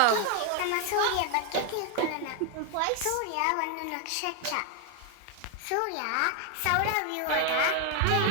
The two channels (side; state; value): both; different; correlation 0.01